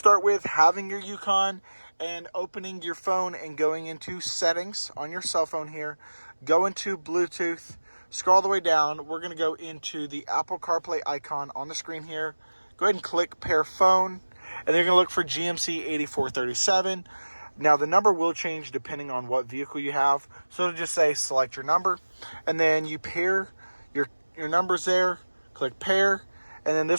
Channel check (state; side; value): inverted; both; correlation -1.00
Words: with having your Yukon and opening your phone and going into settings on your cell phone here. Go into Bluetooth, scroll all the way down. We're going to go into the Apple CarPlay icon on the screen here. Go ahead and click pair phone. And they're going to look for GMC 8437. Now, the number will change depending on what vehicle you have. So it'll just say select your number. And then you pair your numbers there. Click pair. And then